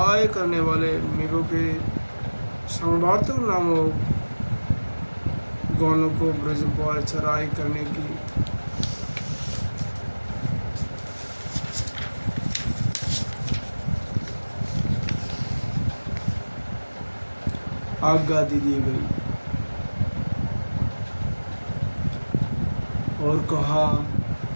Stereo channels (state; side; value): inverted; both; correlation -1.00